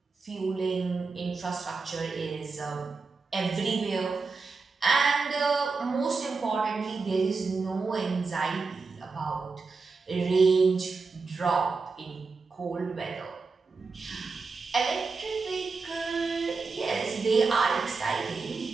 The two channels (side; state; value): left; quieter; 4.4 dB